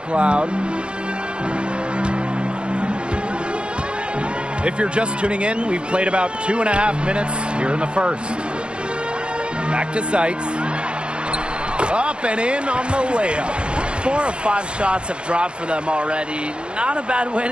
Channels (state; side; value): late; left; 0.055 ms